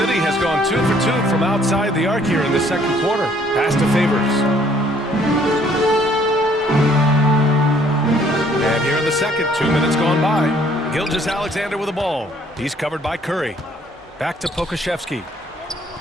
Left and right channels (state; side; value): normal; both; correlation 0.62